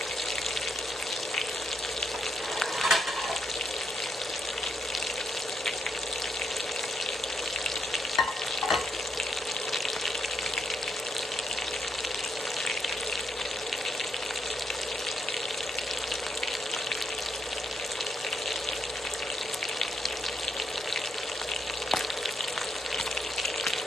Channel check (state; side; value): normal; both; correlation 0.78